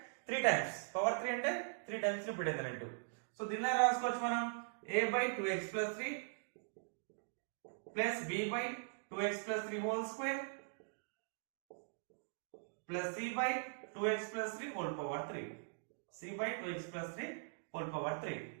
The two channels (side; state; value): left; silent; digital silence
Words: 3 times, power 3 అంటే 3 times repeated అన్నట్టు. సో దీన్ని రాసుకోవచ్చు మనం a by 2x plus 3 plus b by 2x plus 3 whole square plus c by 2x plus 3 whole power 3. c by 2x plus 3 whole power 3.